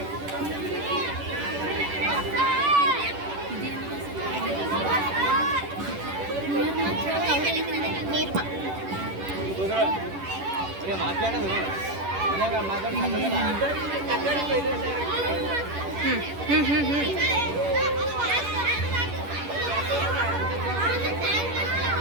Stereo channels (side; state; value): left; late; 10 ms